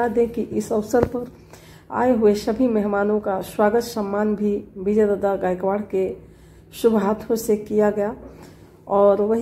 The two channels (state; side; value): identical; both; correlation 1.00